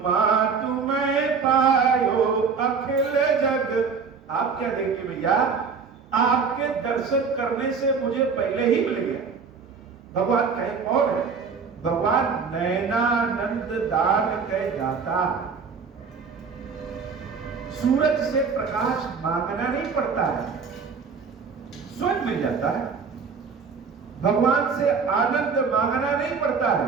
तुम्हें पायो अखिल जग। आप क्या देंगे भैया? आपके दर्शन करने से मुझे पहले ही मिल गया। भगवान कहे कौन है? भगवान नयनानंद दान कह दाता। सूरज से प्रकाश मांगना नहीं पड़ता है, स्वयं मिल जाता है। भगवान से आनंद मांगना नहीं पड़ता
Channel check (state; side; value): quieter; left; 5.5 dB